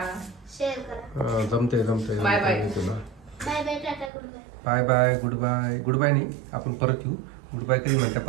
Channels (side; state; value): left; drops out; at 4.1 s